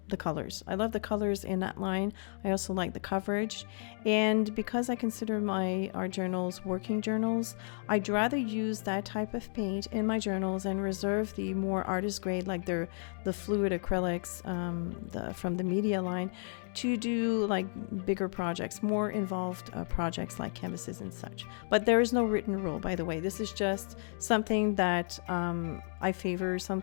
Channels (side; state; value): right; silent; 56 dB below the other